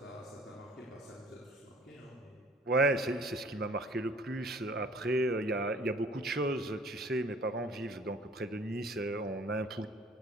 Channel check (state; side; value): normal; both; correlation 0.52